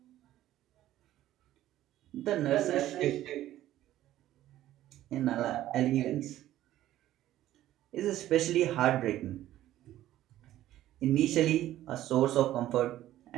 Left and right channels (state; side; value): quieter; left; 13.7 dB